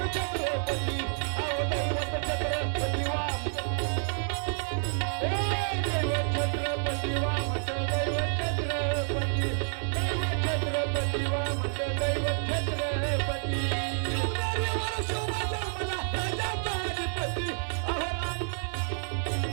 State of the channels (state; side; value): silent; left; digital silence